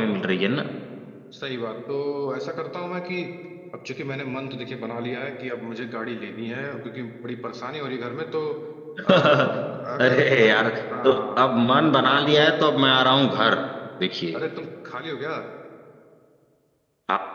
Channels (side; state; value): both; identical; correlation 1.00